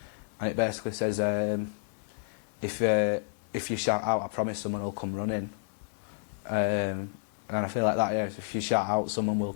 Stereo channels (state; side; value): silent; right; 58 dB below the other